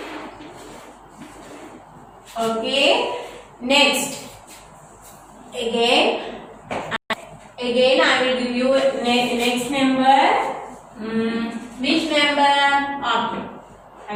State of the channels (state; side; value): identical; both; correlation 1.00